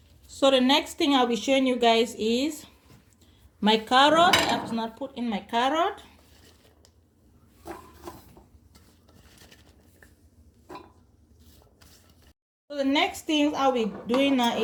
So the next thing I'll be showing you guys is my carrot. I have to not put in my carrot. So the next thing I'll be doing now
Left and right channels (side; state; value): both; identical; correlation 1.00